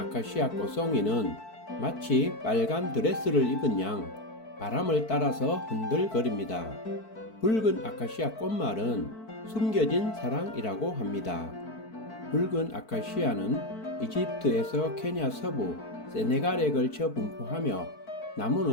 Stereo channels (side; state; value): right; late; 4.5 ms